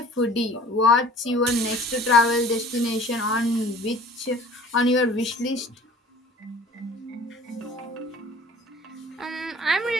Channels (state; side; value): normal; both; correlation 0.47